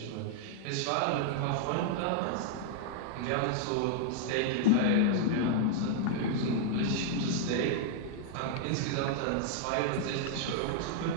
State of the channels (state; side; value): different; both; correlation -0.01